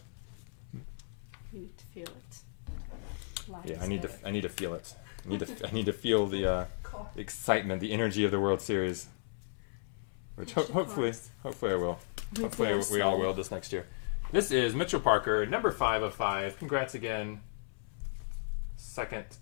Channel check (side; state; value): right; silent; 55 dB below the other